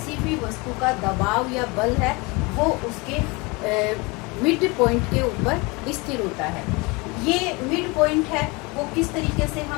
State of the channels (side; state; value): right; quieter; 26.6 dB